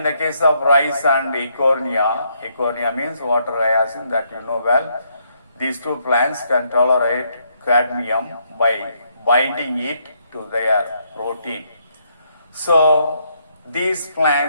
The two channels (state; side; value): inverted; both; correlation -0.74